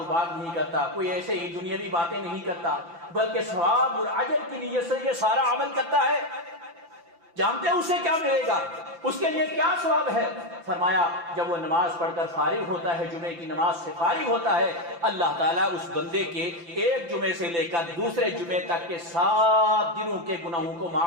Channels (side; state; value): left; late; 5.9 ms